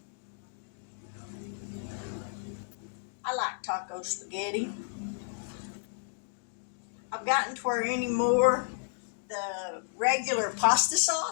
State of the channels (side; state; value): right; silent; digital silence